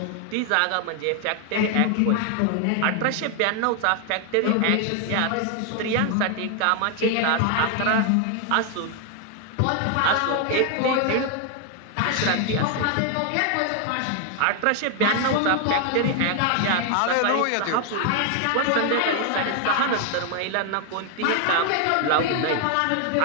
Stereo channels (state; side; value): different; both; correlation 0.00